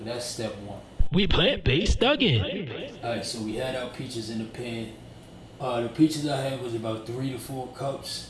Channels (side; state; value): both; identical; correlation 1.00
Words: that's step one. We plant-based Thuggin. Alright, so we had our peaches in the pan. The peaches I had was about 3 to 4